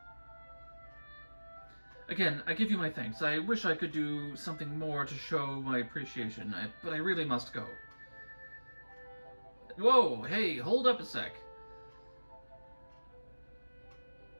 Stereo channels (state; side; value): inverted; both; correlation -1.00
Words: Again, I give you my thanks. I wish I could do something more to show my appreciation, but I really must go. Whoa, hey, hold up a sec.